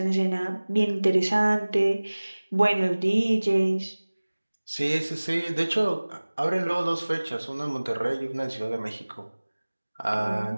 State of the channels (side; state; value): both; inverted; correlation -1.00